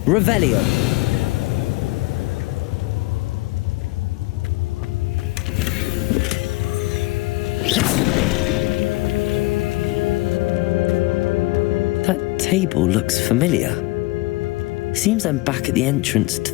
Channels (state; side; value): quieter; right; 21.8 dB